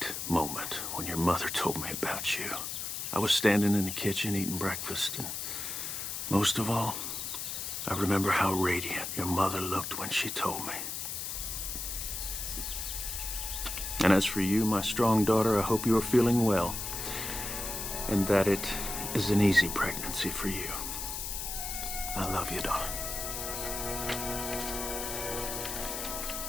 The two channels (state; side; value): noise; left; hiss, 4 dB below the sound